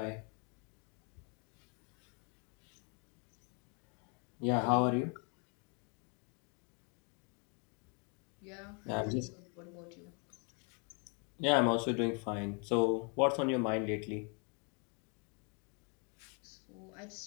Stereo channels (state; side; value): quieter; right; 36.4 dB